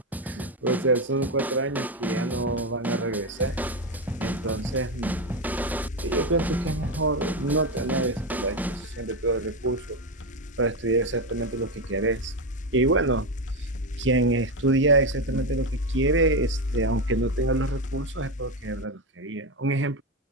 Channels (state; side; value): normal; both; correlation 0.12